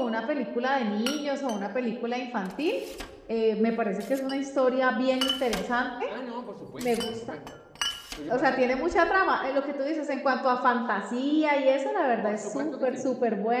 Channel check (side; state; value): both; identical; correlation 1.00